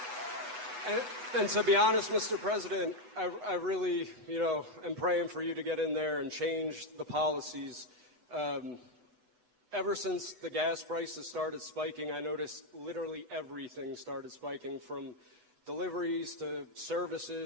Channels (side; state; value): left; late; 8.1 ms